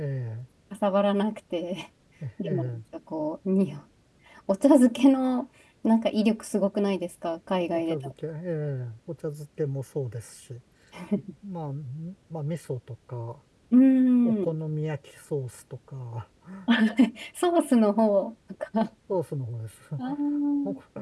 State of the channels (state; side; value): identical; both; correlation 1.00